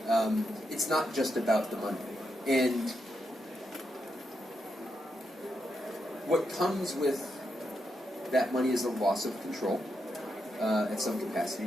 It's not just about the money. And what comes with that money is a loss of control at some capacity.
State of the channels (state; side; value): normal; both; correlation 0.83